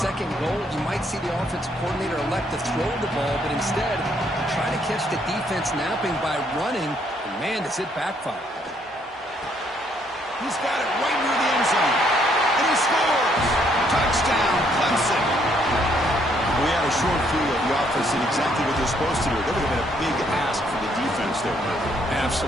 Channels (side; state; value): both; normal; correlation 0.69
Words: goal, you might see the offensive coordinator elect to throw the ball, but instead, try to catch the defense napping by running. And man, does it backfire. He's got it right near the end zone. And he scores! Touchdown, Clemson! We had a short field. The offense did exactly what they're supposed to do. That would have been a big ask for the defense there.